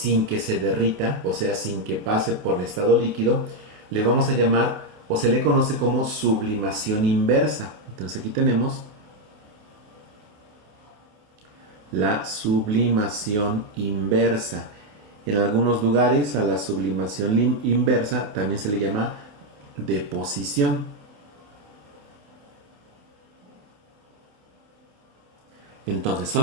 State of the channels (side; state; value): left; late; 28 ms